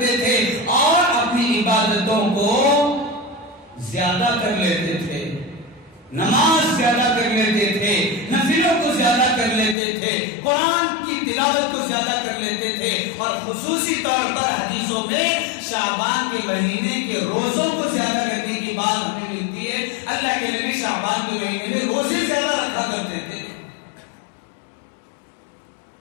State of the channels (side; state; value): right; drops out; at 9.8 s